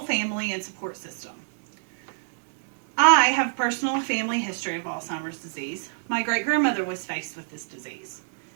family and support system. I have personal family history of Alzheimer's disease. My great-grandmother was faced with this disease.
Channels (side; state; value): left; silent; digital silence